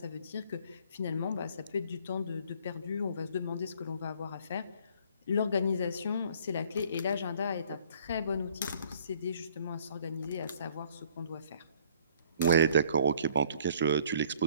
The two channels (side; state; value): both; inverted; correlation -0.57